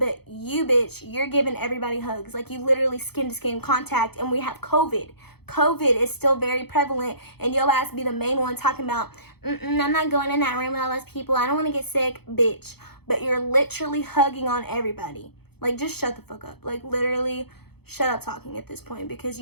you, bitch, you're giving everybody hugs. Like, you literally skin-to-skin contact, and we have COVID. COVID is still very prevalent, and your ass be the main one talking about, I'm not going in that room with all those people. I don't want to get sick, bitch. But you're literally hugging on everybody. Like, just shut the fuck up. Like, literally, shut up talking at this point, because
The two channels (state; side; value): late; right; 0.97 ms